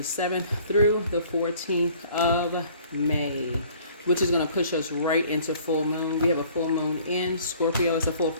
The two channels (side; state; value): both; inverted; correlation -0.54